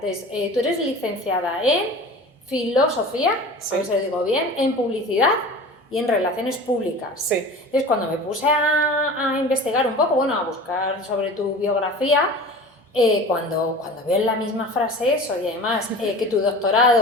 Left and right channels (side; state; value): both; normal; correlation 0.38